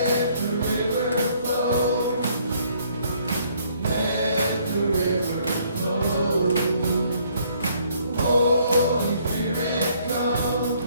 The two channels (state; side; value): inverted; both; correlation -0.65